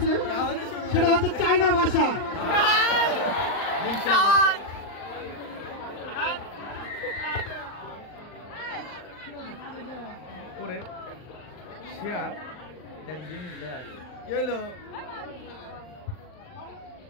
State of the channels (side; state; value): right; late; 39 ms